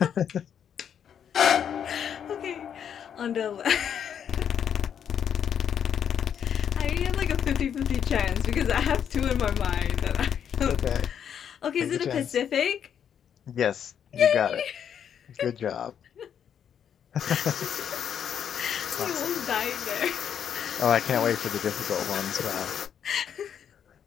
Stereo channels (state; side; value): quieter; right; 8.5 dB